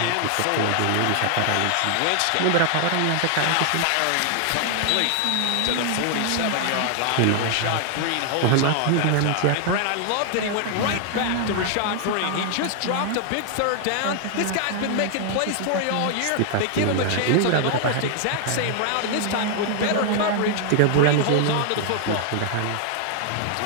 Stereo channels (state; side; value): different; both; correlation 0.00